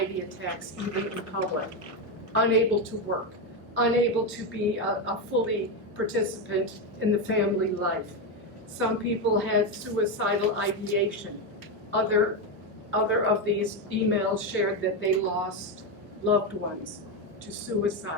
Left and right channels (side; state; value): both; normal; correlation 0.09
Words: attacks even in public. Unable to work, unable to be a fully participant in the family life. Some people had suicidal ideation. Other of these emails shared that they lost loved ones to